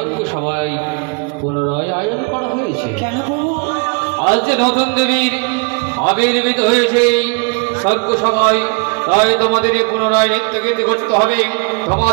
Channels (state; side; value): quieter; left; 35.0 dB